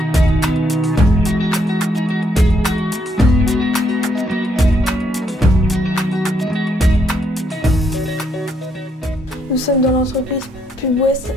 Nous sommes dans l'entreprise Pub West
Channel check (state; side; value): normal; both; correlation 0.74